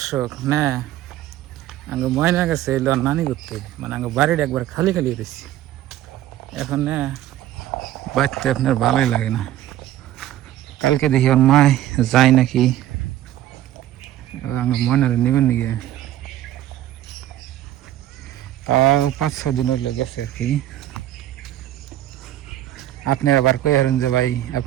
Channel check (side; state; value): left; quieter; 13.2 dB